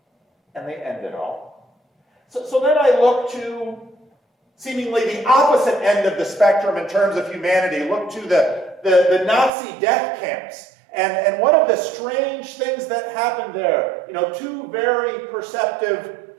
and they end it all. So then I look to seemingly the opposite end of the spectrum in terms of humanity. Look to the Nazi death camps. And one of the strange things that happened there, two very perceptive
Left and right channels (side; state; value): left; drops out; at 9.5 s